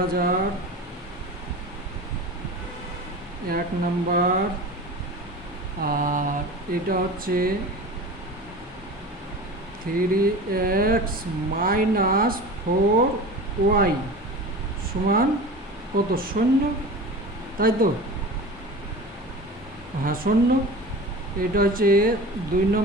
1 নম্বর। আর এটা হচ্ছে 3x - 4y সমান কত, 0, তাই তো, হ্যাঁ 0। এটা হচ্ছে 2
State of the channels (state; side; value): normal; both; correlation 0.34